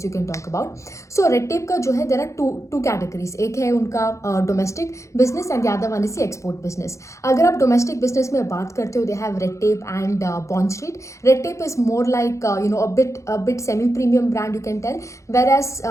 you can talk about. So Red Tape का जो है there are two categories. एक है उनका domestic business and the other one is the export business. अगर आप domestic business में बात करते हो, they have Red Tape and Bond Street. Red Tape is more like a bit semi-premium brand you can tell,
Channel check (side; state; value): right; late; 0.15 ms